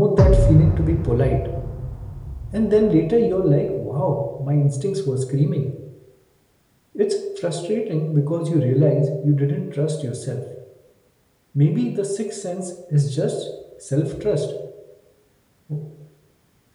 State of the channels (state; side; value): identical; both; correlation 1.00